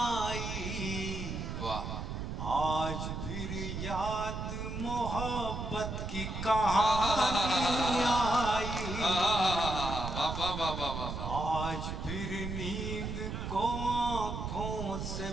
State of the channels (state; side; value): noise; right; rumble, 5 dB below the sound